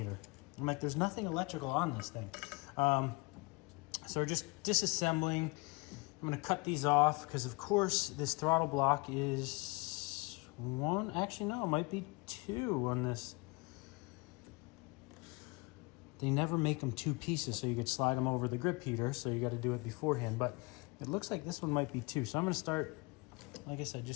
I'm like, there's nothing electrical on this thing. So we're just disassembling. I'm gonna cut these off because of course this throttle block is one, actually no, it might be two on this. They never make them two pieces, so you could slide them over the grip heater, so you got to do it beforehand. But it looks like this one might be two. So I'm going to start, like I said,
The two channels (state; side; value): quieter; right; 27.1 dB